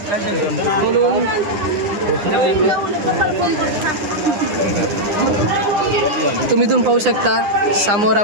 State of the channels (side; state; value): left; late; 9.8 ms